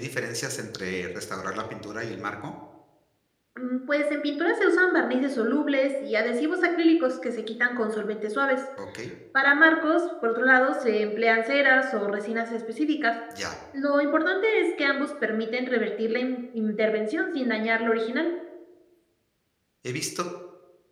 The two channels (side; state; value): both; identical; correlation 1.00